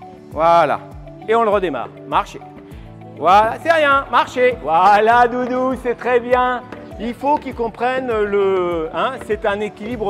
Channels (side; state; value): both; identical; correlation 1.00